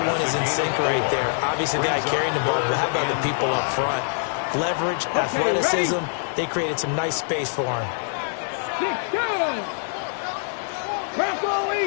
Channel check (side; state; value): right; silent; 62 dB below the other